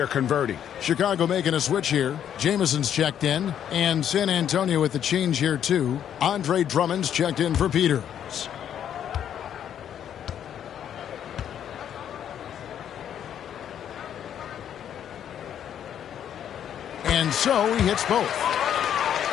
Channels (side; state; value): right; quieter; 9.6 dB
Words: converting. Chicago making a switch here. Jameson's checked in. And San Antonio with the change here, too. Andre Drummond's checked in for Peters. And so he hits both.